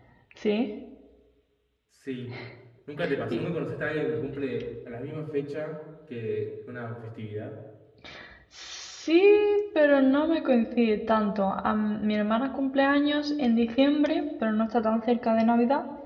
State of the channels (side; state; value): both; identical; correlation 1.00